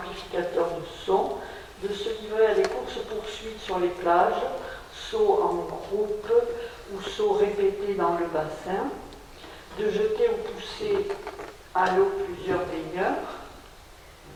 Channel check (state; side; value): identical; both; correlation 1.00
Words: de son, de se livrer à des courses-poursuites sur les plages, sauts en groupe ou sauts répétés dans le bassin, de jeter ou pousser à l'eau plusieurs baigneurs,